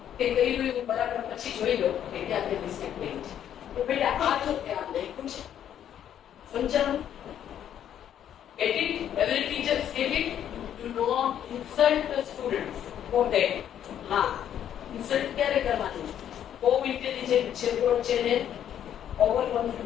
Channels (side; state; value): right; quieter; 10.0 dB